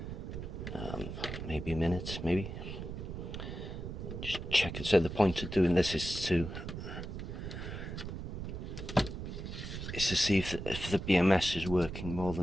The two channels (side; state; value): right; noise; rumble, 7 dB below the sound